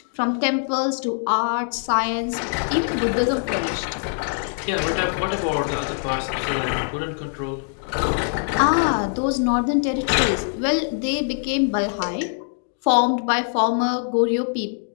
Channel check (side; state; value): right; silent; 63 dB below the other